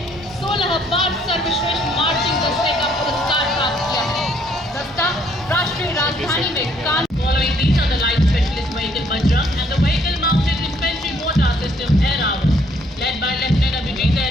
16 बार सर्वश्रेष्ठ मार्चिंग दस्ते का पुरस्कार प्राप्त किया है। दस्ता राष्ट्रीय राजधानी में कान Following these are the light specialist vehicle Bajrang and the vehicle mounted infantry mortar system Air Hour, led by Lieutenant Abhijit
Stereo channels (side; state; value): both; normal; correlation 0.66